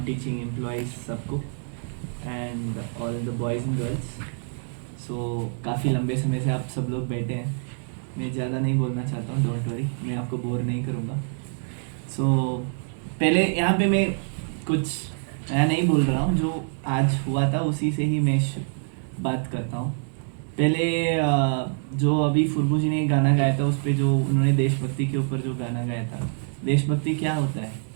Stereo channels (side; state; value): left; silent; 61 dB below the other